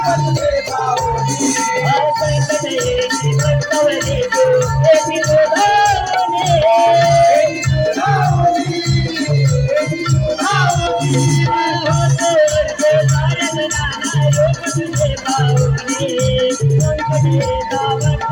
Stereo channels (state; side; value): identical; both; correlation 1.00